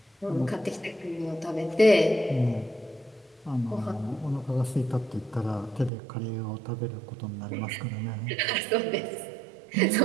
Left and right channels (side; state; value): left; drops out; at 5.9 s